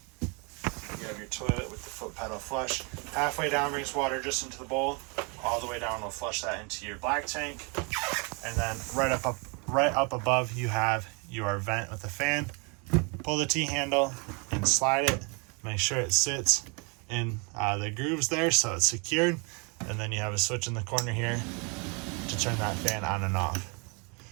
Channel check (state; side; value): quieter; left; 32.9 dB